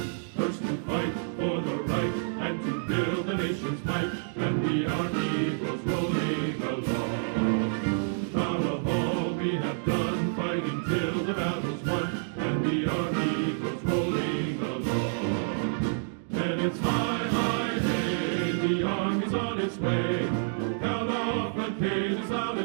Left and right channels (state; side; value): silent; left; digital silence